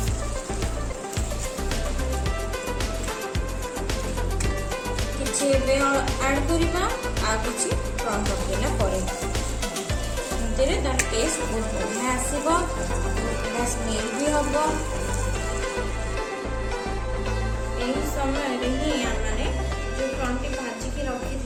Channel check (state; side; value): identical; both; correlation 1.00